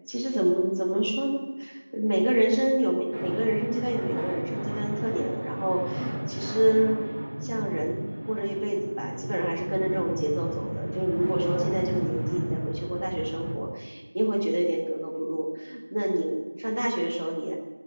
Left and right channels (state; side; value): inverted; both; correlation -1.00